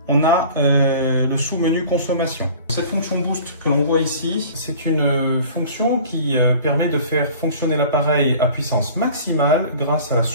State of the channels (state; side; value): inverted; both; correlation -0.45